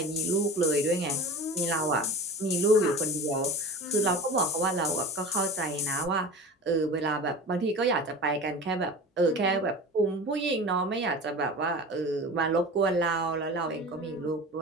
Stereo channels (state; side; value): normal; both; correlation 0.35